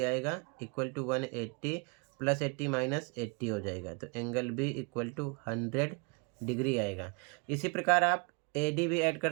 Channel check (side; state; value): left; quieter; 32.8 dB